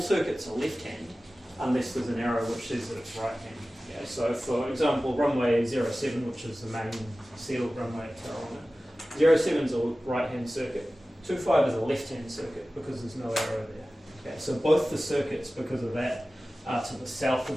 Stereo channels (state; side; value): normal; both; correlation 0.96